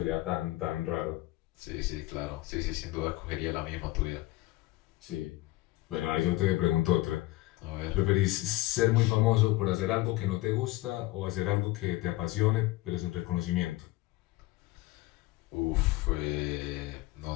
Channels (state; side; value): quieter; right; 18.8 dB